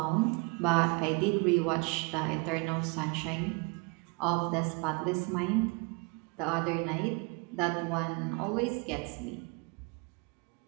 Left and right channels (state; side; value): quieter; left; 31.2 dB